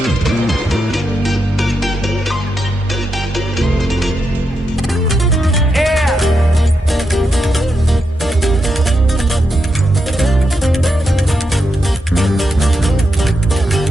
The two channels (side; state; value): both; normal; correlation 0.85